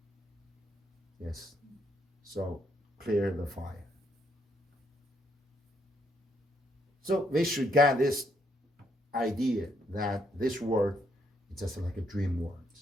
Yes. So clear the fire. So we should get this idea that this word is just like a dream word.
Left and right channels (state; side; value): normal; both; correlation 0.74